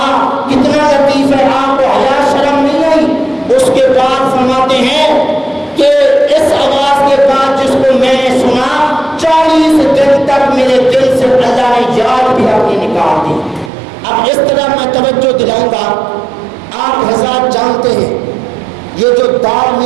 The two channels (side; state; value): left; drops out; at 13.7 s